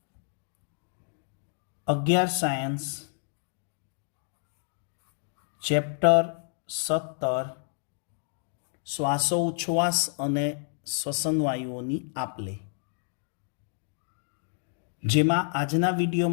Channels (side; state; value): right; silent; digital silence